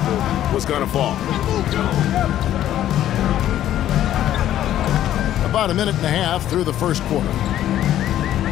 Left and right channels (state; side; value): quieter; right; 12.1 dB